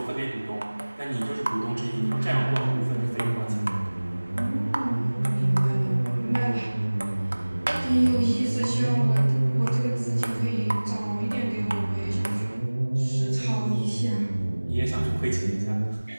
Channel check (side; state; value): both; inverted; correlation -1.00